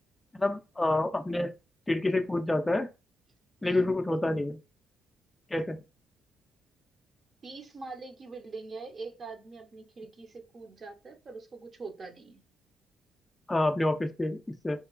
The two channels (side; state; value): both; normal; correlation 0.96